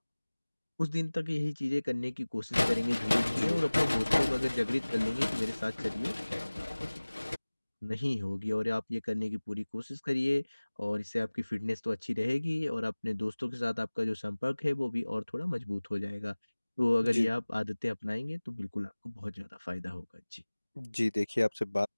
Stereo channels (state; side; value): inverted; both; correlation -1.00